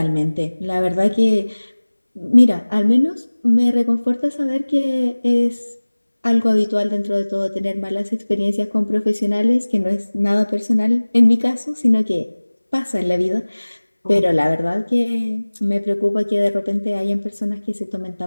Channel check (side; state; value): both; inverted; correlation -1.00